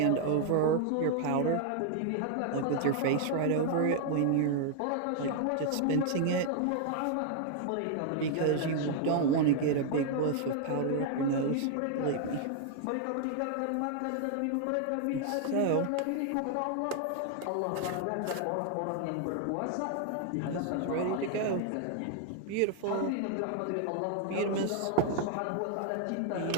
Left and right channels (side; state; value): both; different; correlation 0.00